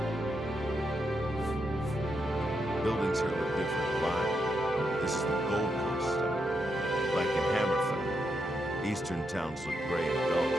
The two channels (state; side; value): normal; both; correlation 0.82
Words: Buildings here look different. Why? This is the Gold Coast. Like in Hammerfell, eastern towns look gray and dull.